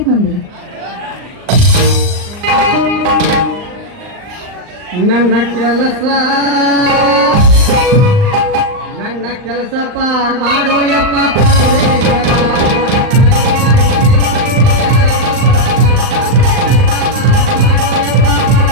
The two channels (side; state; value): left; late; 39 ms